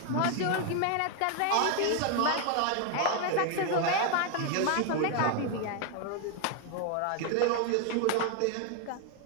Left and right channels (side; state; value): both; different; correlation 0.00